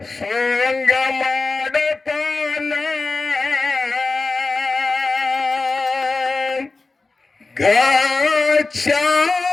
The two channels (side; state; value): right; quieter; 3.7 dB